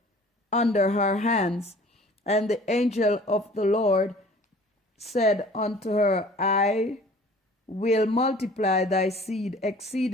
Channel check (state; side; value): normal; both; correlation 0.48